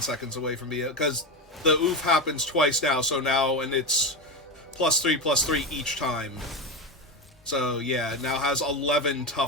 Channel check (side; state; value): both; normal; correlation 0.16